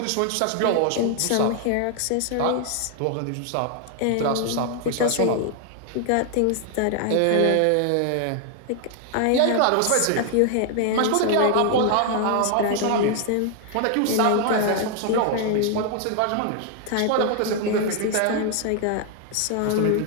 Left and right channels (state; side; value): different; both; correlation 0.00